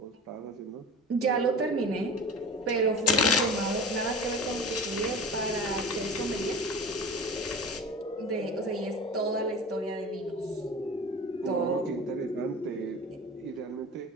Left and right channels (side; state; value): both; normal; correlation 0.35